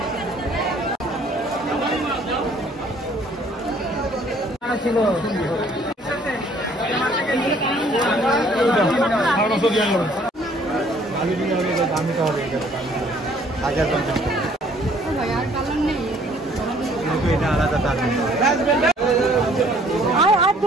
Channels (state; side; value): normal; both; correlation 0.59